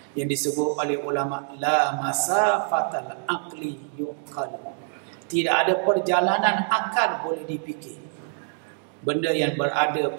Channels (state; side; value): silent; left; 61 dB below the other